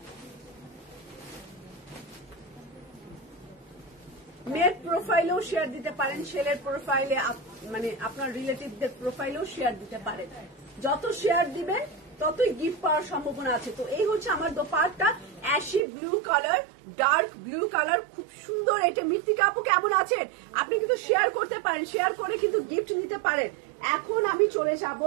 মেয়ের প্রোফাইলেও শেয়ার দিতে পারেন, ছেলের প্রোফাইলে, মানে আপনার রিলেটিভদের প্রোফাইলেও শেয়ার দিতে পারেন। যত শেয়ার দিবেন ততই গিফট পাওয়ার সম্ভাবনা আছে। তো এই হচ্ছে আমার dupatta, ashy blue colour, dark blue colour, খুব সুন্দর। এটা মৃত্তিকা আপু কেমন আছেন? আপনি কিন্তু শেয়ার করতে পারেন, শেয়ার করে কিন্তু গিফট নিতে পারেন। এখন আমি চলে যাব,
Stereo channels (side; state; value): left; drops out; at 15.8 s